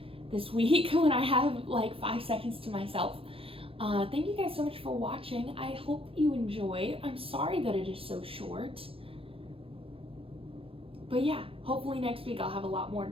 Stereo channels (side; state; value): left; late; 0.27 ms